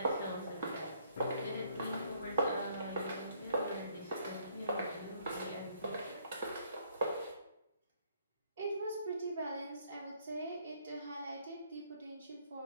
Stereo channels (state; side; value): inverted; both; correlation -0.66